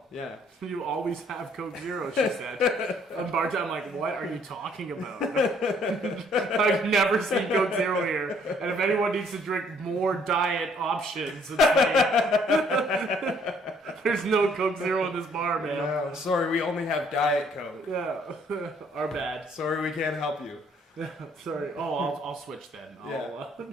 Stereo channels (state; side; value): normal; both; correlation 0.63